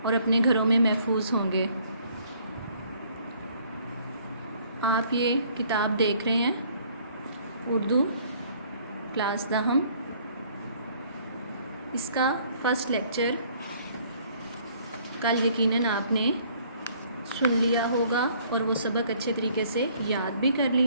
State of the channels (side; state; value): both; inverted; correlation -0.60